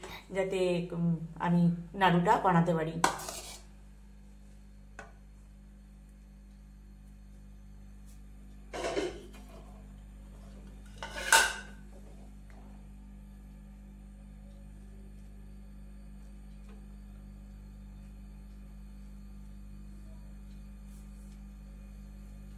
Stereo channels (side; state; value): both; identical; correlation 1.00